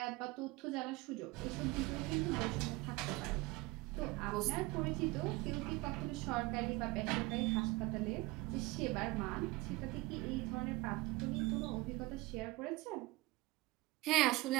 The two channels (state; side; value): quieter; left; 21.3 dB